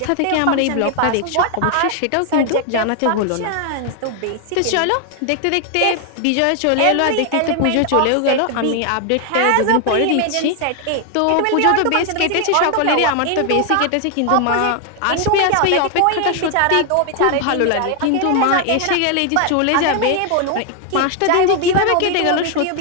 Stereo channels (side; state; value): both; different; correlation 0.00